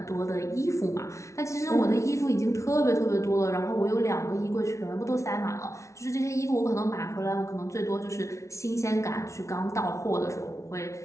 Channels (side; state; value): right; late; 0.14 ms